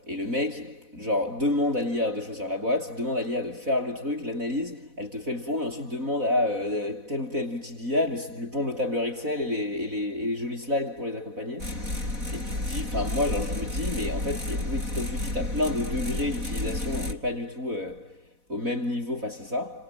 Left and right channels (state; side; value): late; left; 4.1 ms